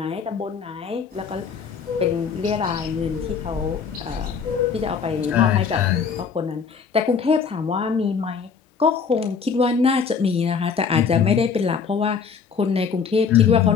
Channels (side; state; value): right; quieter; 6.0 dB